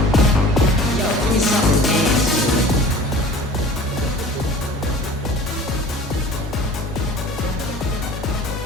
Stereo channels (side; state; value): both; normal; correlation 0.44